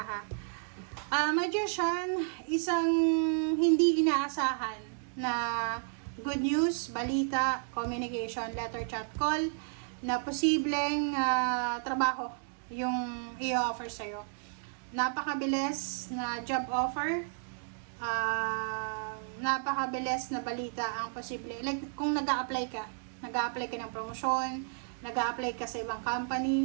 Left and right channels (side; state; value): left; silent; digital silence